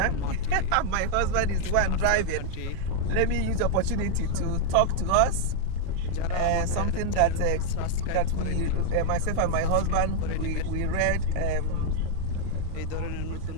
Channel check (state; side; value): different; both; correlation 0.00